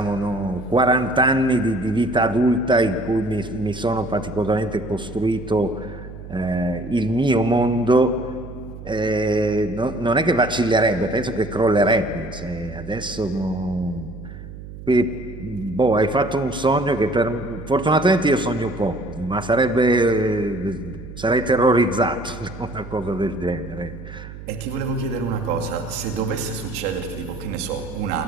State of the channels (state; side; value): noise; right; hum, 13 dB below the sound